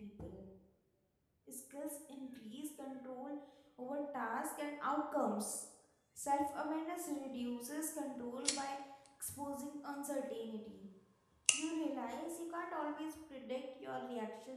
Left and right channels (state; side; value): identical; both; correlation 1.00